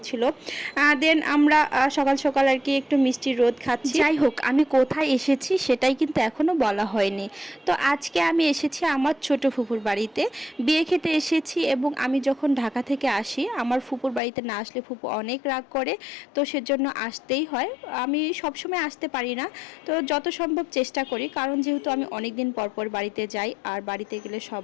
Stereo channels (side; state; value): right; drops out; at 14.2 s